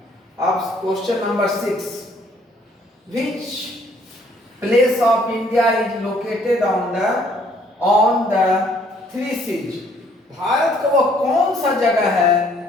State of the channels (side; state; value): both; normal; correlation 0.63